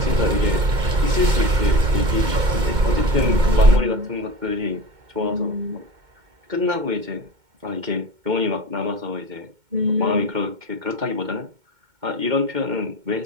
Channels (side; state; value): left; late; 2.2 ms